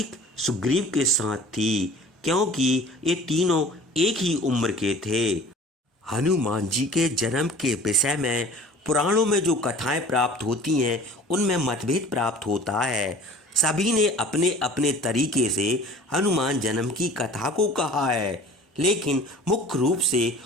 सुग्रीव के साथ थी, क्योंकि ये तीनों एक ही उम्र के थे। हनुमान जी के जन्म के विषय में पुराणों में जो कथाएं प्राप्त होती हैं उनमें मतभेद प्राप्त होता है। सभी ने अपने अपने तरीके से हनुमान जन्म की कथा को कहा है, लेकिन मुख्य रूप से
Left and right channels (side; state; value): both; normal; correlation 0.45